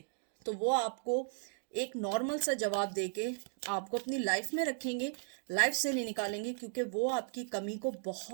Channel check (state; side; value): silent; left; digital silence